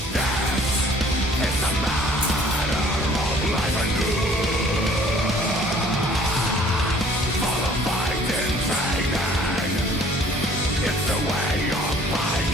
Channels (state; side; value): normal; both; correlation 0.55